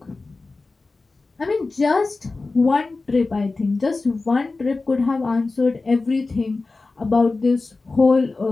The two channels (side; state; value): right; quieter; 3.6 dB